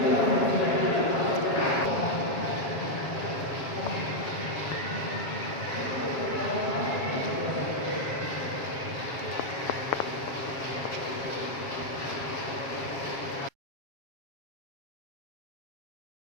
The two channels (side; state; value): right; late; 7.4 ms